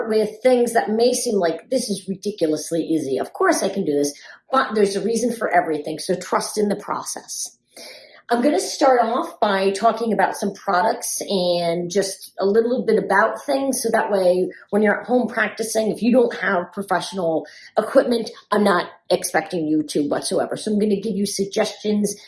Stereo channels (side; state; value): both; identical; correlation 1.00